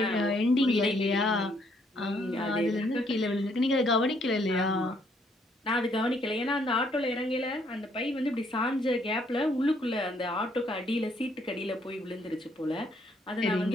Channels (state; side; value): normal; both; correlation 0.69